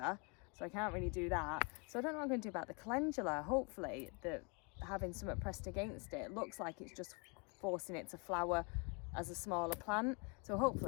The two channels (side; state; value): right; quieter; 33.4 dB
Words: so I can't really do that. So I don't know what I'm going to do about the calendula. Hopefully, having something pressed against it looks like it's just forcing it to flower as a smaller plant. So